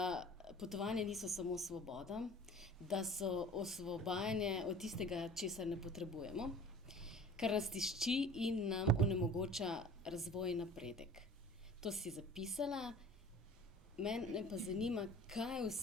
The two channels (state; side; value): normal; both; correlation 0.44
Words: potovanja niso samo svoboda, da so osvobajanje od tistega, česar ne potrebujemo, kar nas tišči in nam onemogoča razvoj in napredek. To si zapisala, mene pa zanima, kaj